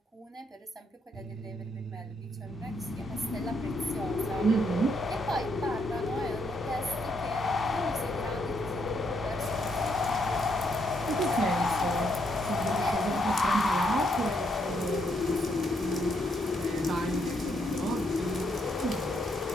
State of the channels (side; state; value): both; normal; correlation 0.75